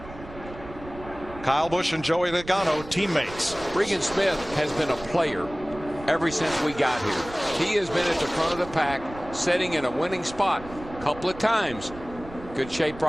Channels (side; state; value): right; noise; rumble, 16 dB below the sound